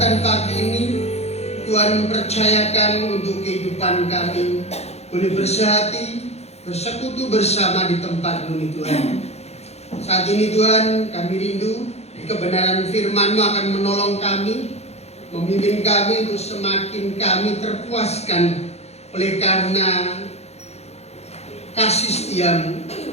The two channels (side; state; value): right; late; 0.31 ms